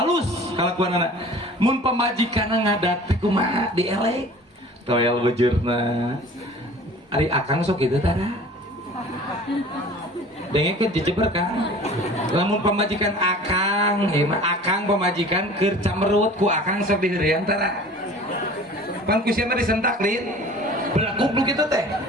kalakuanana. Mun pamajikanna ngadat teh kumaha dielek. Toel bujurna. Ari akang sok kitu tara. Dengekeun dijeber Kang. Lamun pamajikan akang, akang pamajikan keur camerut ku akang sok diheureun tara. Pan ku sia mah disentak lin. Belah goblok kitu teh.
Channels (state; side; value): normal; both; correlation 0.44